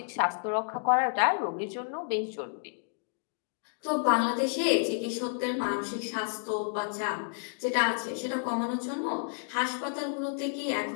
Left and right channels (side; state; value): right; silent; digital silence